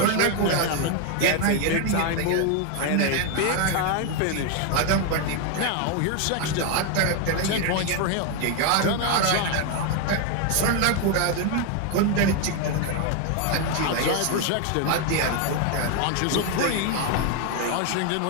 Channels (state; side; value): different; both; correlation 0.01